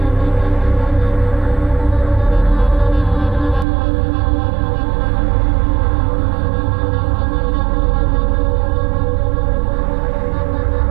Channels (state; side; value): drops out; left; at 3.7 s